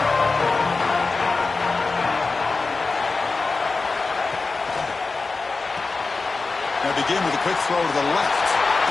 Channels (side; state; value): right; quieter; 4.0 dB